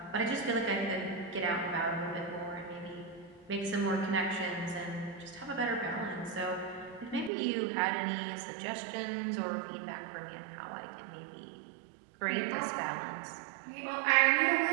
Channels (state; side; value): drops out; left; at 7.3 s